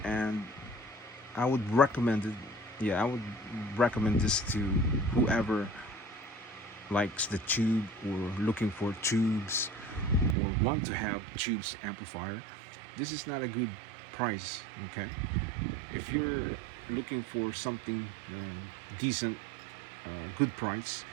and I would recommend it. Yeah, I would recommend this to whoever likes the tube or looking for tubes or want to have tubes amplifier. This is not a good price, okay? If you're looking for something decent, good price,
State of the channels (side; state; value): left; drops out; at 10.4 s